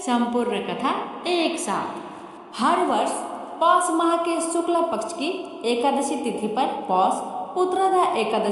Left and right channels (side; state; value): both; identical; correlation 1.00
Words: संपूर्ण कथा एक साथ। हर वर्ष पौष माह के शुक्ला पक्ष की एकादशी तिथि पर पौष पुत्रदा